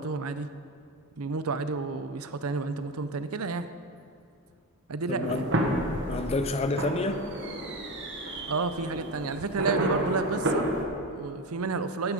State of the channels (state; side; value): normal; both; correlation 0.21